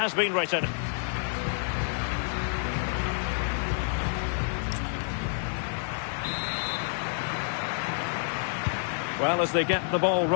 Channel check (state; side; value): silent; right; 59 dB below the other